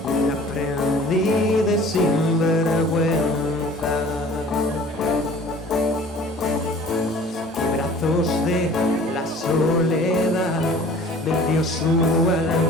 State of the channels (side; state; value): both; normal; correlation 0.47